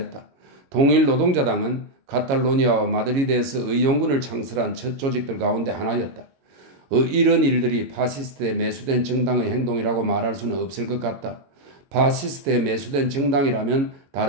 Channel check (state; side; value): late; left; 22 ms